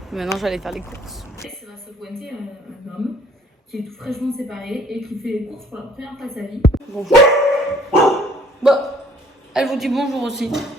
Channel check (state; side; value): normal; both; correlation 0.58